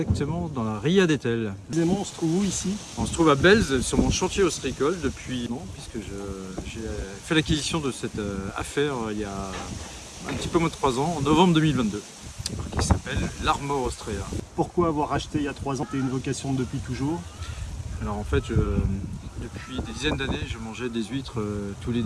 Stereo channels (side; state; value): both; identical; correlation 1.00